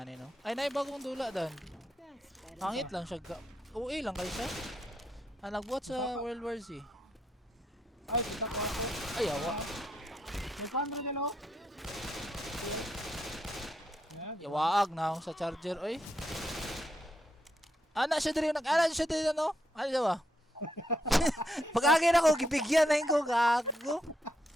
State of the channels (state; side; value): normal; both; correlation 0.79